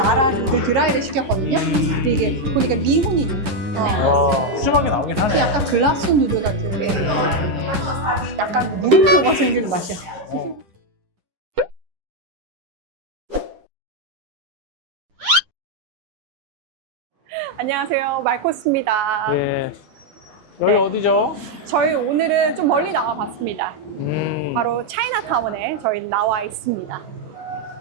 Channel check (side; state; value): left; late; 10 ms